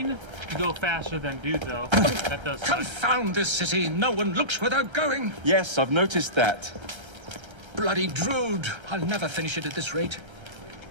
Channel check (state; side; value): late; left; 1.3 ms